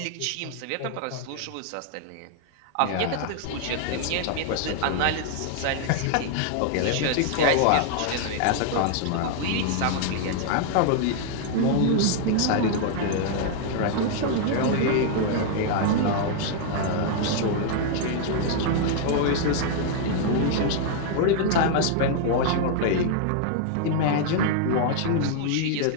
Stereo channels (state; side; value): different; both; correlation 0.00